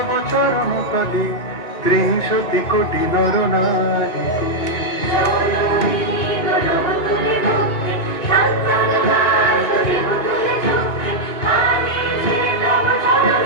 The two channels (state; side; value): late; right; 2.9 ms